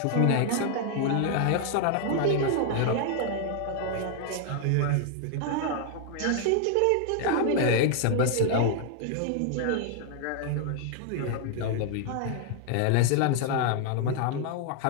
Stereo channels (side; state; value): both; different; correlation 0.00